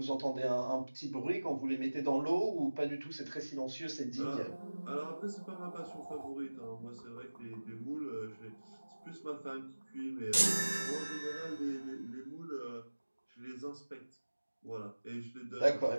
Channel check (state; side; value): inverted; both; correlation -1.00